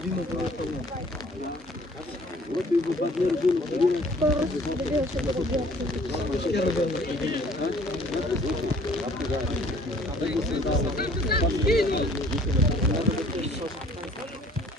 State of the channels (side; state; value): both; normal; correlation 0.55